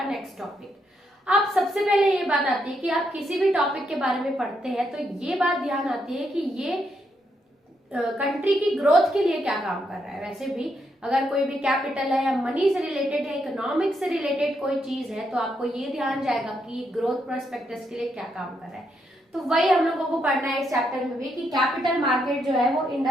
नेक्स्ट टॉपिक। अब सबसे पहले ये बात आती है कि आप किसी भी टॉपिक के बारे में पढ़ते हैं तो ये बात ध्यान आती है कि ये कंट्री की ग्रोथ के लिए क्या काम कर रहा है। वैसे भी अगर कोई भी कैपिटल है या मनी से रिलेटेड है, इकोनॉमिक्स से रिलेटेड कोई चीज है तो आपको ये ध्यान जाएगा कि ग्रोथ प्रोस्पेक्टस के लिए क्या काम कर रहा है। तो वही हम लोगों को पढ़ना है इस चैप्टर में भी कि कैपिटल मार्केट जो है वो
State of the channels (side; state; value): both; normal; correlation 0.79